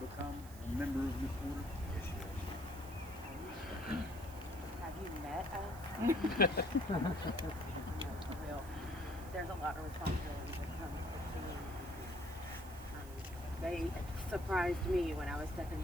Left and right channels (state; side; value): noise; right; hiss, 18 dB below the sound